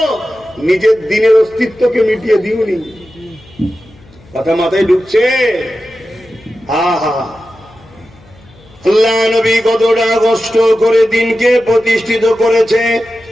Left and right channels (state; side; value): noise; left; hum, 26 dB below the sound